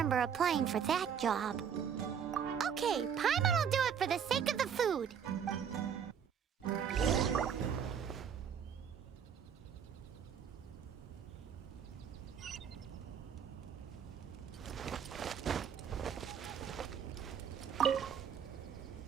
applying for that job. Okay, Paimon will do it for the sake of the food.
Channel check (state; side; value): quieter; left; 7.9 dB